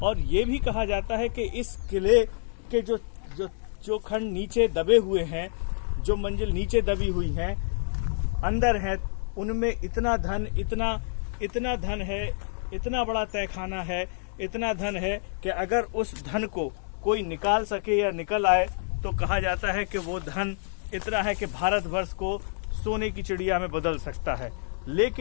ये भी कहा जाता है कि इस किले के जो खंड नीचे दबे हुए हैं, जो मंजिल नीचे दबी हुई हैं, अंदर है, उनमें इतना धन है, इतना बड़ा तहखाना है, इतना धन है कि अगर उस धन को कोई निकाल सके या निकल आए तो कहा जाता है कि वो धन इतना है कि भारतवर्ष को सोने की चिड़िया में बदल सकता है।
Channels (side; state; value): right; silent; digital silence